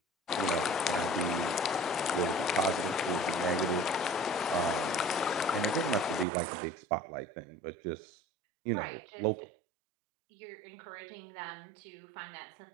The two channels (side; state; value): left; drops out; at 6.2 s